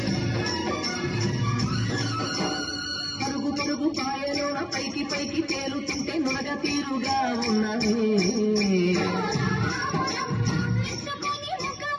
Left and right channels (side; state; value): both; identical; correlation 1.00